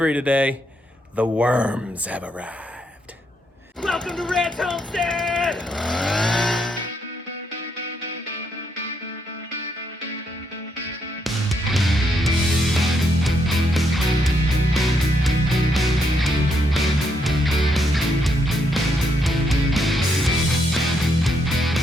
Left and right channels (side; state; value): both; normal; correlation 0.77